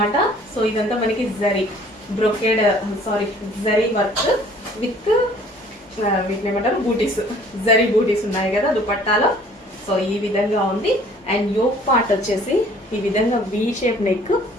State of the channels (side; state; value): both; normal; correlation 0.54